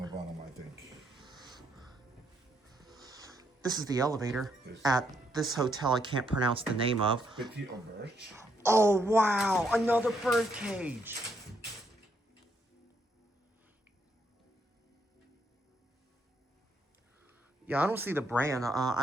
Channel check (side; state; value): both; normal; correlation 0.75